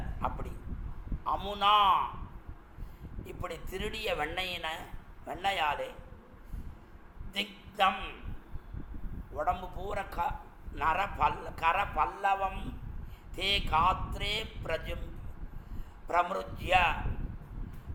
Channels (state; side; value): identical; both; correlation 1.00